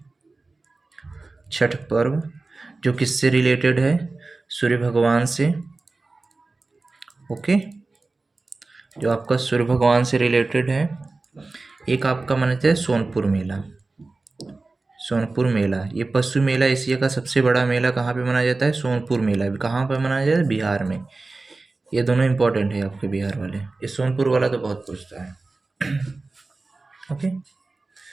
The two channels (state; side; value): quieter; left; 3.5 dB